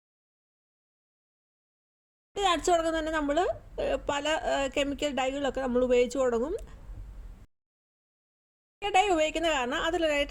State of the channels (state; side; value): identical; both; correlation 1.00